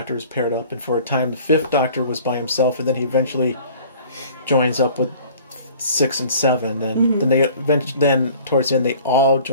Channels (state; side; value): inverted; both; correlation -0.49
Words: was paired up. And for a time, the 5th Doctor was by himself. And then he eventually joins up with 6 and 7. And then towards the end, they all